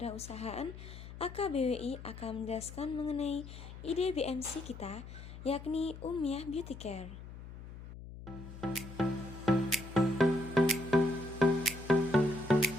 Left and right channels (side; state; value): left; noise; hum, 13 dB below the sound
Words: AKBWI akan menjelaskan mengenai ide BMC kita, yakni Umyah Beauty Care.